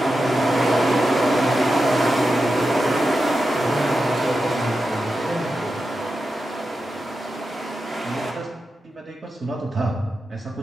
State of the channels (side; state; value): both; normal; correlation 0.90